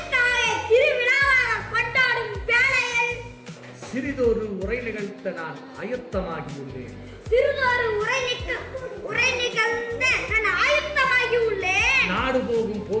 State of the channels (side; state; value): both; identical; correlation 1.00